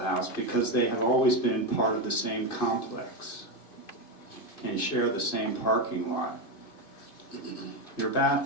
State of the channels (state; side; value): late; right; 2.5 ms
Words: because they have always been part of the same complex and share the same parking lot. Your